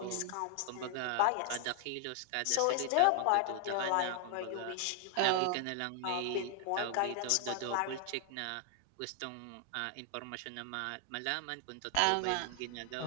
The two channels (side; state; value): both; different; correlation 0.00